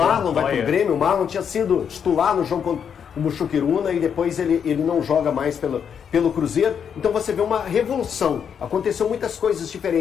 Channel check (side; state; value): right; quieter; 7.6 dB